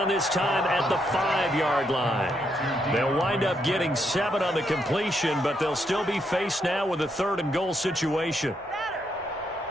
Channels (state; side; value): normal; both; correlation 0.78